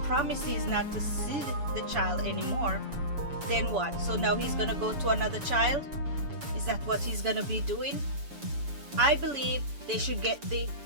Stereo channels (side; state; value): left; late; 7.0 ms